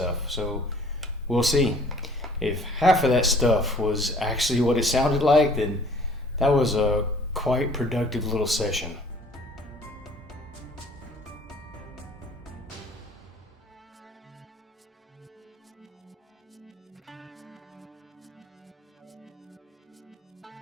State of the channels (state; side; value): normal; both; correlation 0.53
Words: So we'll see. If half of that stuff was actually what it sounded like, then that was a quite productive little session.